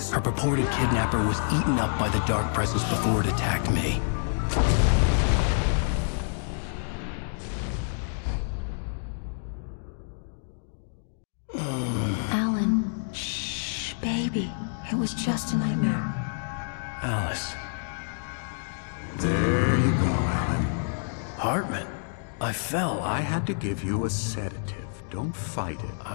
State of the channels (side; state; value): right; silent; digital silence